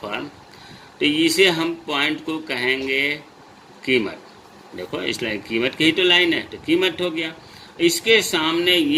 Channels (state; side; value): identical; both; correlation 1.00